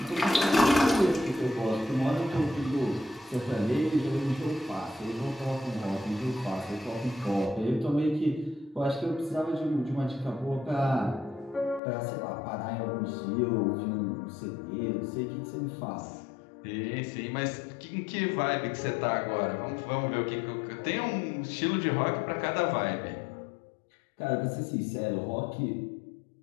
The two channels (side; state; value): right; drops out; at 11.8 s